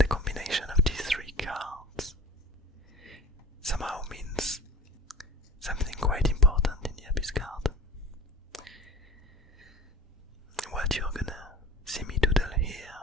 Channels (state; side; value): normal; both; correlation 0.40